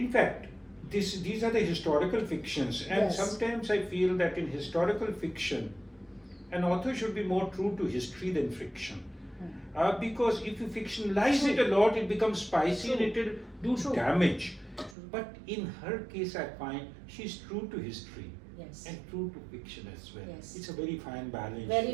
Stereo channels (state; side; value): drops out; left; at 15.0 s